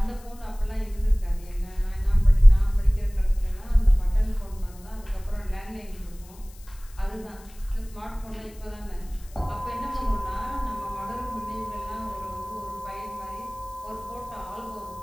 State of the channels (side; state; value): left; noise; hiss, 24 dB below the sound